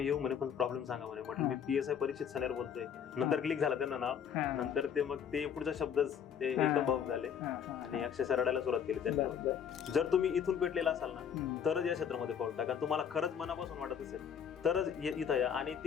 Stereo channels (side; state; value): right; quieter; 8.0 dB